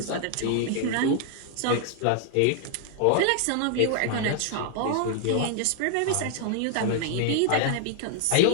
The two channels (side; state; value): both; different; correlation 0.00